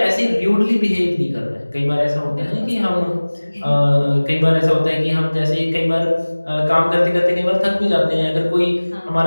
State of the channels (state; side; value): inverted; both; correlation -1.00